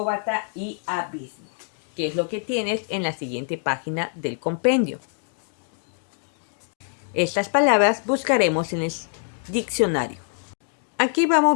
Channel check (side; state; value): right; silent; 62 dB below the other